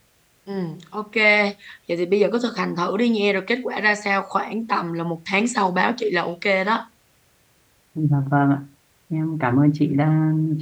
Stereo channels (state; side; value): identical; both; correlation 1.00